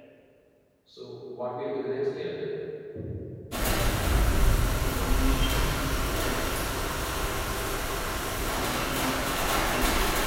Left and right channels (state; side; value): identical; both; correlation 1.00